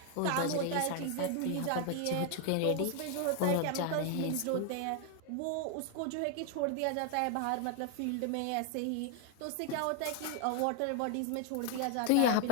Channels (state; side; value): different; both; correlation 0.00